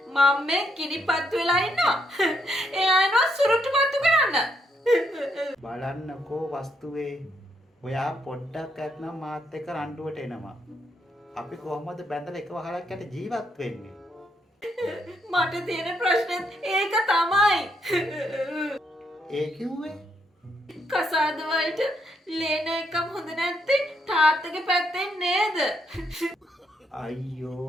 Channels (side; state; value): both; normal; correlation 0.76